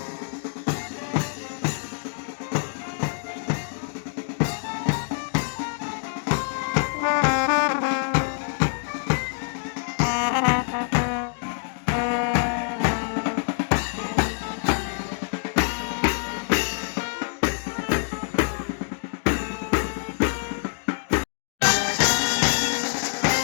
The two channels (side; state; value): right; silent; digital silence